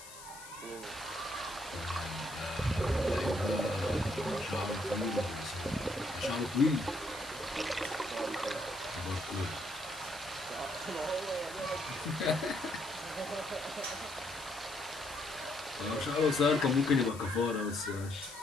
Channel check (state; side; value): noise; left; hiss, 15 dB below the sound